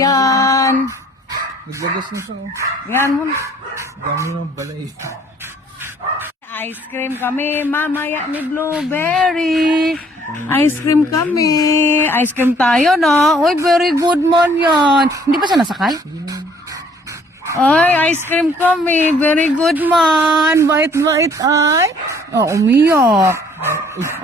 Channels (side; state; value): both; normal; correlation 0.60